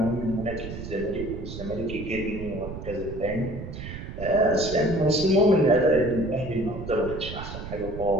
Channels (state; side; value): noise; right; rumble, 9 dB below the sound